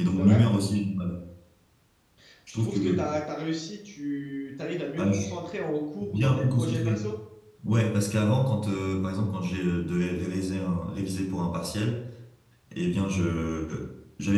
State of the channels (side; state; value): both; identical; correlation 1.00